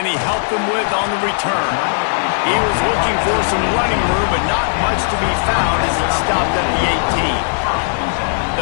he help them with on the return? He was looking for some running room, but not much to be found as he stopped at the 18.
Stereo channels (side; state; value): right; silent; digital silence